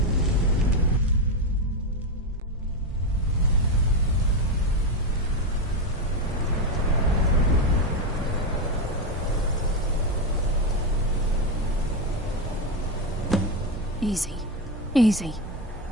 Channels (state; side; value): normal; both; correlation 0.10